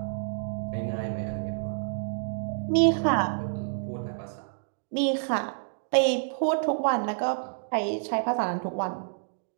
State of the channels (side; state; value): left; silent; digital silence